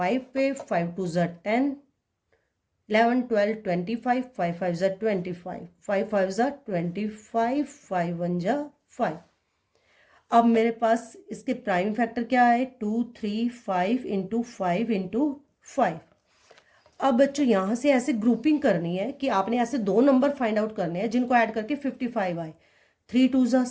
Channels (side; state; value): both; identical; correlation 1.00